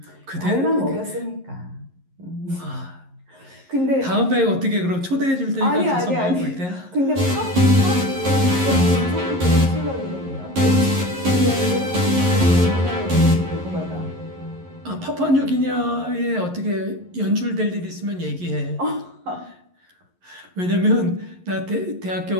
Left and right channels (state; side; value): late; left; 11 ms